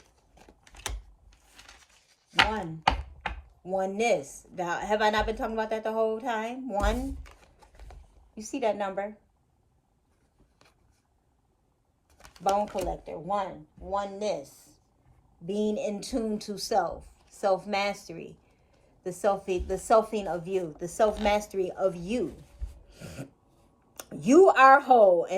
Oneness. Now, have I not been talking about that the whole time? One. You see that number? Bone collector. Oneness. Being in tune to self. Self-mastery. The selfing of you. The self-mastery of you. You are whole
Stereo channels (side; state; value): both; identical; correlation 1.00